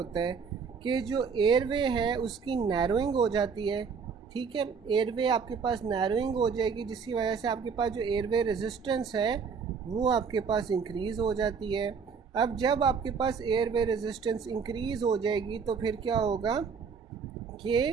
है कि जो एयरवे है उसकी नैरोइंग हो जाती है, ठीक है। एयरवे आपके पास नैरोइंग हो जाएगी जिसकी वजह से आपके पास जो एयरवे रेजिस्टेंस है वो आपके पास इंक्रीज़ हो जाती है। अब जब आपके पास एयरवे रेजिस्टेंस इंक्रीज़ हो जाएगी तो फिर क्या होगा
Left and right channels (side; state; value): left; quieter; 5.8 dB